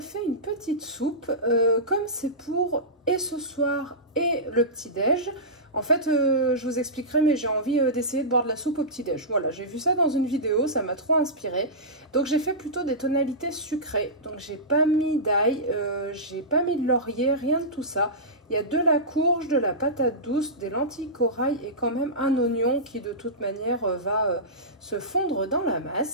une petite soupe, comme c'est pour et ce soir et le petit-déj. En fait, je vous expliquerai, mais j'ai envie d'essayer de boire de la soupe au petit-déj. Voilà, j'ai vu ça dans une vidéo, ça m'a trop inspiré. Donc j'ai fait plutôt des tonalités sucrées. Donc j'ai pas mis d'ail, j'ai pas mis de laurier, rien de tout ça. Il y a de la courge, de la patate douce, des lentilles corail et quand même un oignon qui de toute manière va se fondre dans la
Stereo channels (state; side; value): normal; both; correlation -0.16